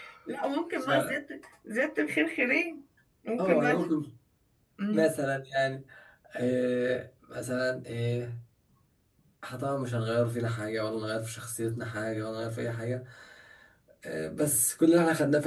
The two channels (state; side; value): identical; both; correlation 1.00